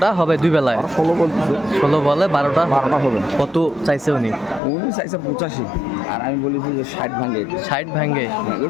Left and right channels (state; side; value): drops out; right; at 4.6 s